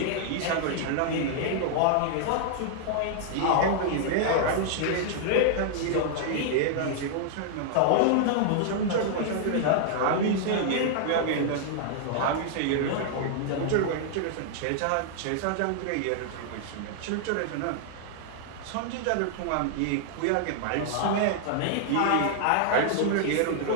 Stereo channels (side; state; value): both; different; correlation -0.01